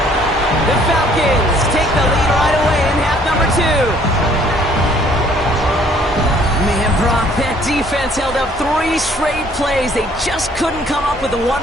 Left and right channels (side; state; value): both; normal; correlation 0.60